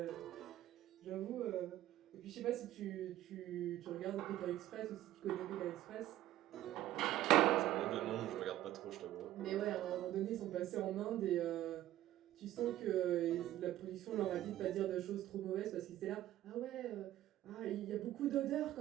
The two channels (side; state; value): left; quieter; 13.9 dB